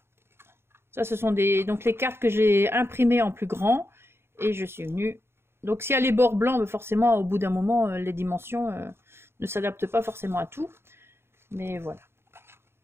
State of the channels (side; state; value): left; late; 0.12 ms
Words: Ça, ce sont donc les cartes que j'ai imprimées en plus grand. Et je suis venue... Donc, s'il y a les bords blancs, forcément, au bout d'un moment, les dimensions ne s'adaptent pas forcément à tout. Mais voilà.